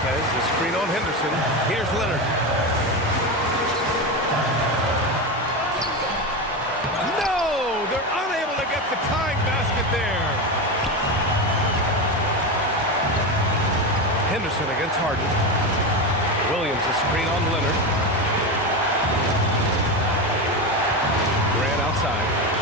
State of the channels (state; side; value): normal; both; correlation 0.17